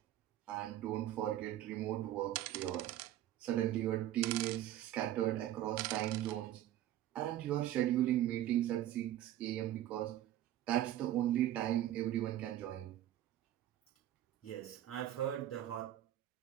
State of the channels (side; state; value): left; quieter; 13.0 dB